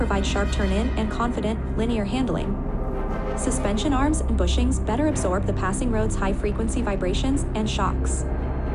sharp turn-in and confident, linear handling. Suspension arms and bushings better absorb the passing road's high-frequency vibrations and shocks.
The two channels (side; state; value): both; identical; correlation 1.00